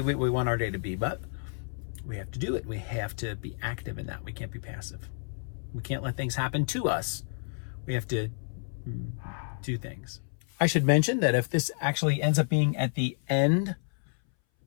what we want our day to be, but we have to do it. We have to be active in that. We can't be passive. We can't let things happen to us. We have to do things. I should mention that if this actually ends up being at the end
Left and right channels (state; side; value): silent; right; 58 dB below the other